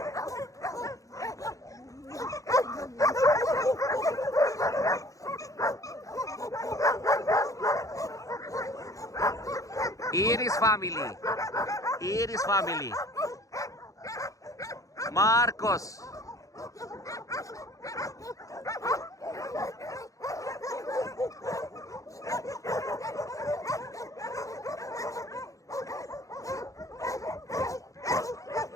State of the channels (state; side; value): late; right; 0.16 ms